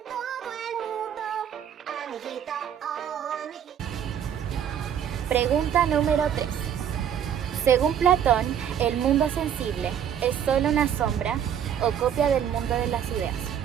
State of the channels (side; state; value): left; quieter; 9.1 dB